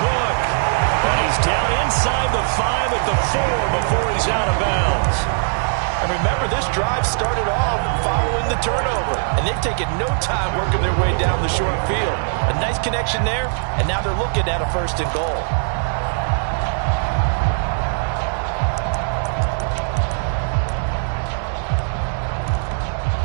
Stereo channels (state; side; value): silent; left; digital silence